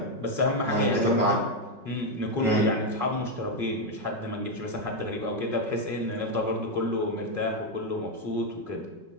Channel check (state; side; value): late; left; 5.4 ms